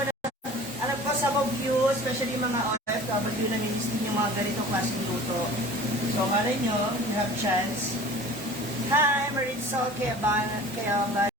ko sa mga views, especially mga OFW na nilistin yung mga ganitong klaseng luto. So, malay nyo, you have chance. Hi, Marisol Kayala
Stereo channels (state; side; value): normal; both; correlation 0.43